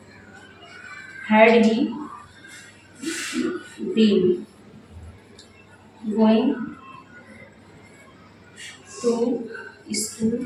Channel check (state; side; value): identical; both; correlation 1.00